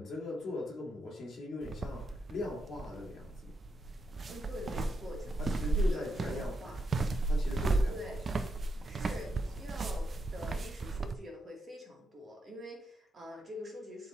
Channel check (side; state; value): both; normal; correlation 0.83